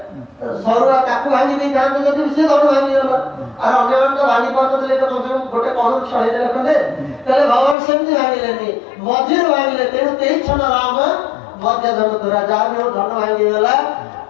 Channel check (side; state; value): right; drops out; at 7.8 s